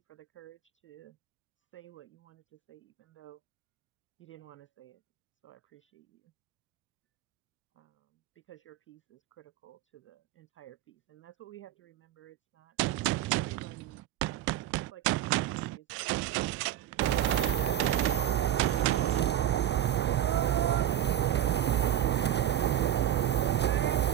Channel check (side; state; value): left; quieter; 11.5 dB